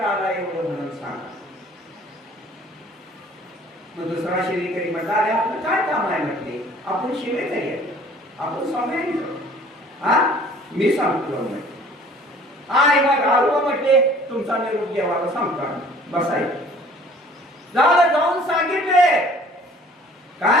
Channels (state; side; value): normal; both; correlation 0.52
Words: आला एवढं म्हणून सांगा. मग दुसरा शिवेकरी म्हटला, अरे आपलं काय काम आहे म्हटले, आपण शिवेकरी आहे, आपण स्वामी. हा मी सांगतो म्हटले. आणि मग आलो म्हटले तुमचा निरोप देवाला सांगता बसायचं. झालं, जाऊन सांगितले.